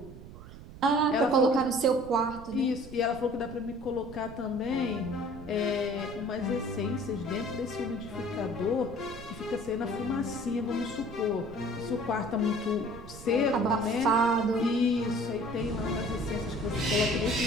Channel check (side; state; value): right; noise; rumble, 15 dB below the sound